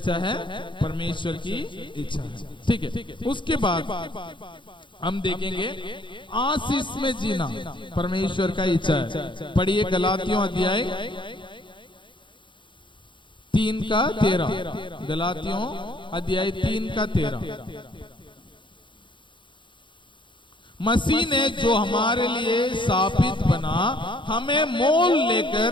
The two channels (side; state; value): right; late; 0.23 ms